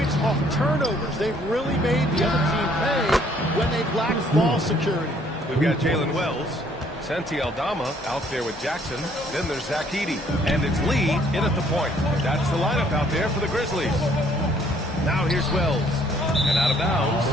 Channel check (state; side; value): normal; both; correlation 0.63